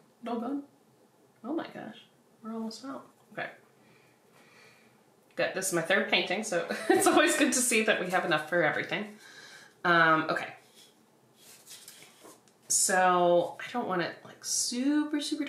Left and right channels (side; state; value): both; identical; correlation 1.00